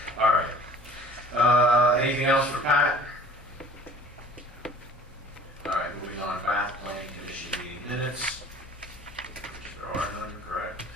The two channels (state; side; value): normal; both; correlation 0.48